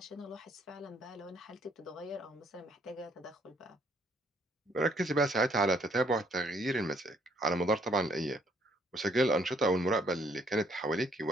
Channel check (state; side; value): normal; both; correlation 0.66